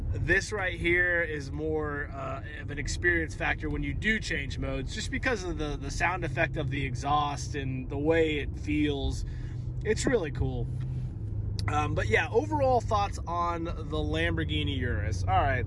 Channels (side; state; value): both; identical; correlation 1.00